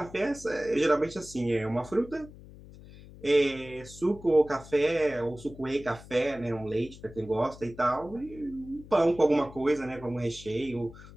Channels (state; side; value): noise; left; hum, 18 dB below the sound